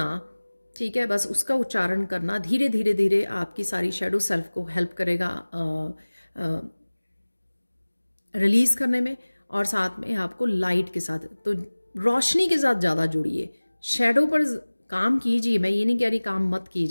ठीक है। बस उसका उच्चारण करना धीरे धीरे धीरे आपकी सारी शैडो सेल्फ को हेल्प करेगा रिलीज़ करने में, और साथ में आपको लाइट के साथ, तो रोशनी के साथ ज़्यादा जुड़िए। शैडो पर काम कीजिए, मैं ये नहीं कह रही काम मत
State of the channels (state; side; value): inverted; both; correlation -1.00